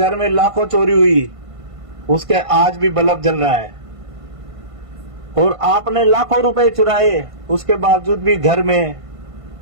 में लाखों चोरी हुई उसके आज भी बल्ब जल रहा है, और आपने लाखों रुपए चुराए उसके बावजूद भी घर में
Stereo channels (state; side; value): late; left; 1.5 ms